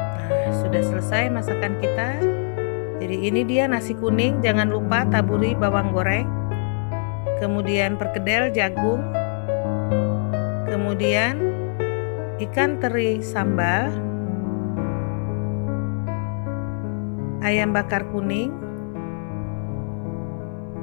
Nah, sudah selesai masakan kita. Jadi ini dia nasi kuning, jangan lupa taburi bawang goreng, kemudian perkedel jagung, kemudian ikan teri sambal, ayam bakar kuning,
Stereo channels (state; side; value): silent; right; 63 dB below the other